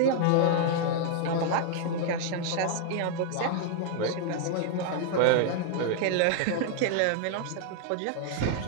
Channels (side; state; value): both; different; correlation 0.00